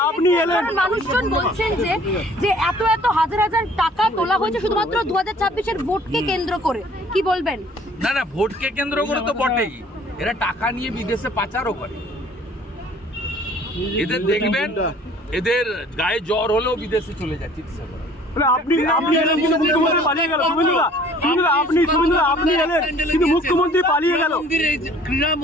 আপনি এলেন, মানুষজন বলছেন যে এত হাজার হাজার টাকা তোলা হয়েছে শুধুমাত্র 2026-এর ভোটকে কেন্দ্র করে, কি বলবেন? না, ভোটকে কেন্দ্র করে তো বটেই, এরা টাকা নিয়ে বিদেশে পাচারও করে। এদের দেখবেন, এদের গায়ে জ্বর হলেও বিদেশে চলে যায় চিকিৎসা করা। আপনি এলেন কিন্তু মুখ্যমন্ত্রী পালিয়ে গেল। আপনি এলেন কিন্তু মুখ্যমন্ত্রী পালিয়ে গেল।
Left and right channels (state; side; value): normal; both; correlation 0.53